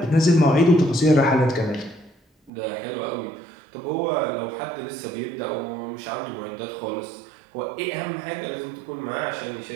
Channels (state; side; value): drops out; left; at 2.5 s